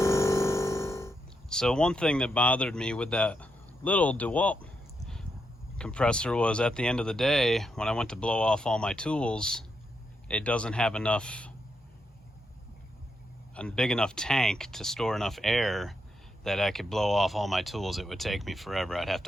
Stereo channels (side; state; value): both; normal; correlation 0.82